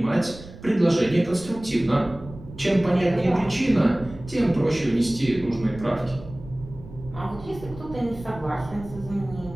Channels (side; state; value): right; noise; rumble, 16 dB below the sound